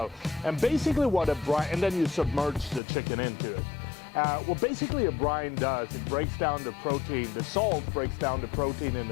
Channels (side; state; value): right; drops out; at 2.8 s